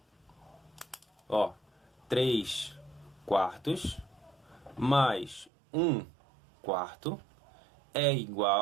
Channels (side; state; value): left; drops out; at 5.5 s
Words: Ó, 3 quartos mais 1 quarto é